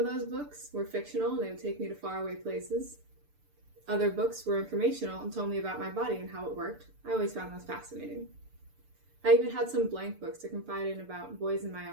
those books were fictional and they would take me to faraway places. Other books were informational and told me about my body and how it worked. I always found those fascinating. I even had some blank books to confide in about boys and my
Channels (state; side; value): late; left; 6.8 ms